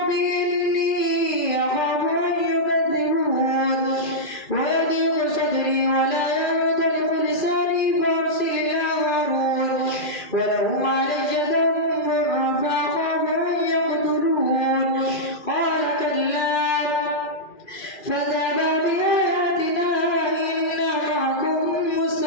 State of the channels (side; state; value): right; late; 2.4 ms